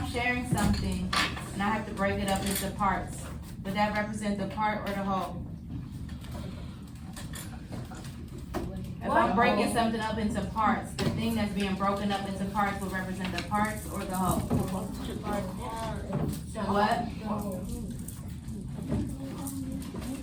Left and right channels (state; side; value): identical; both; correlation 1.00